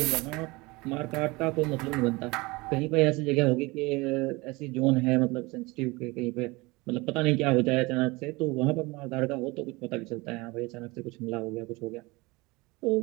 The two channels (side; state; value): left; quieter; 23.7 dB